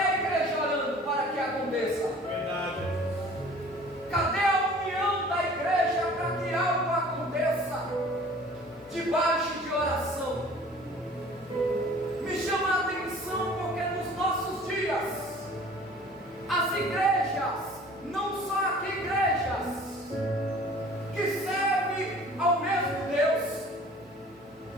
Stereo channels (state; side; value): normal; both; correlation 0.48